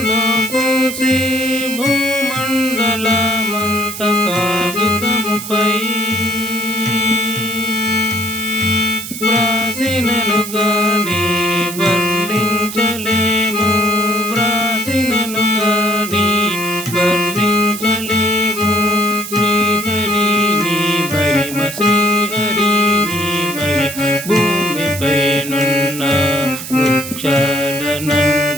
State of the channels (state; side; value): noise; right; hiss, 9 dB below the sound